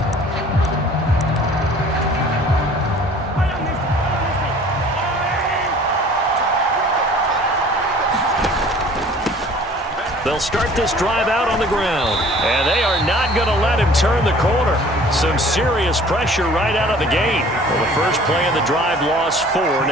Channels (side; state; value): both; normal; correlation 0.50